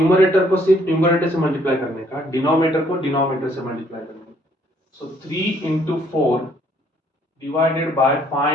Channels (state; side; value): normal; both; correlation 0.65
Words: को सिर्फ न्यूमरेटर से मल्टीप्लाई करने का, डिनोमिनेटर को डिनोमिनेटर से मल्टीप्लाई करने का। सो 3 into 4 divided by